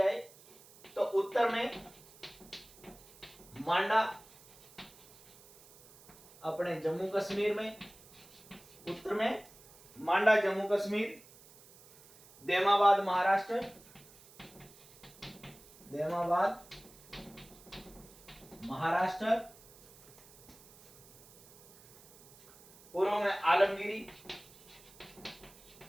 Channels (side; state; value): right; noise; hiss, 23 dB below the sound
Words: तो उत्तर में मांडा अपने जम्मू कश्मीर में, उत्तर में मांडा जम्मू कश्मीर, देमाबाद महाराष्ट्र, देमाबाद महाराष्ट्र, पूर्व में आलमगिरी,